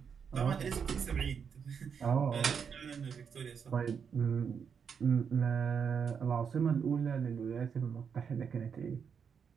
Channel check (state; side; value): quieter; left; 6.7 dB